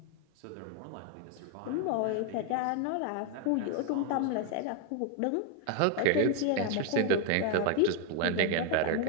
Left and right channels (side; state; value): both; different; correlation 0.01